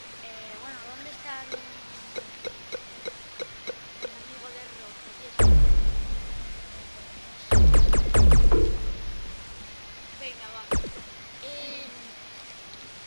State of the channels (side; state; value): both; inverted; correlation -1.00